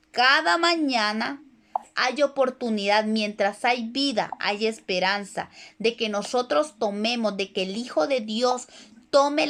cada mañana hay oportunidad, mientras hay vida, hay esperanza de que nosotros tomemos, de que el Hijo de Dios tome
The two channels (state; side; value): identical; both; correlation 1.00